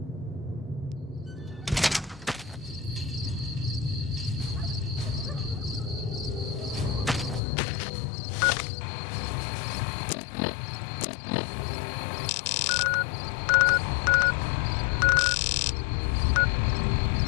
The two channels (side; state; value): right; drops out; at 7.4 s